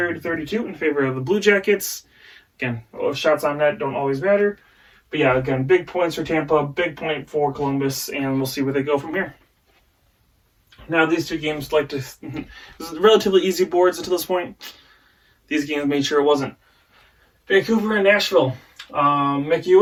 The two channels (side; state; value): both; identical; correlation 1.00